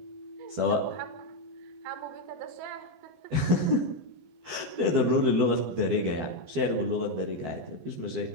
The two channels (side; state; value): left; late; 12 ms